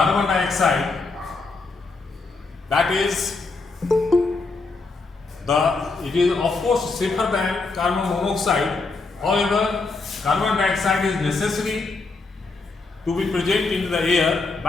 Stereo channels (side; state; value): right; quieter; 3.9 dB